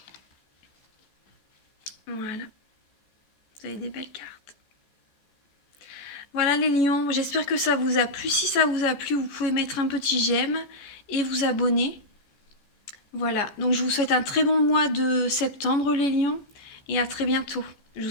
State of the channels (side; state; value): right; late; 14 ms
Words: Voilà. Vous avez des belles cartes. Voilà les lions, j'espère que ça vous a plu. Si ça vous a plu, vous pouvez mettre un petit j'aime et vous abonner. Voilà, donc je vous souhaite un très bon mois de septembre les lions et à très bientôt. Je